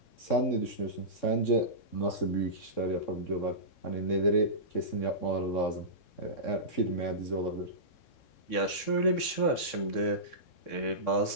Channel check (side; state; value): right; late; 3.6 ms